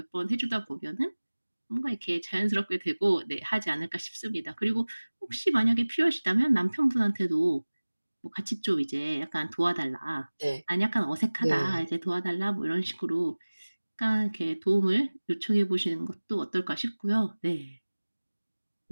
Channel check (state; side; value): inverted; both; correlation -1.00